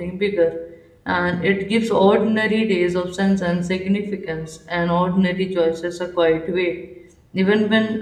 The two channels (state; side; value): identical; both; correlation 1.00